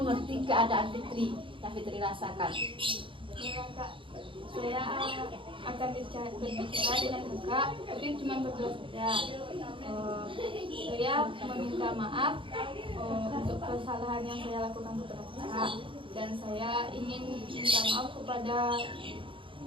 keadaan Fitri yang Fitri rasakan. Ya, Kak, saya akan berbicara dengan kakak, tapi cuma berdua saja. Saya meminta maaf untuk kesalahan yang saya lakukan kepada kakak, dan saya ingin minta maaf kepada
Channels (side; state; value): left; late; 0.25 ms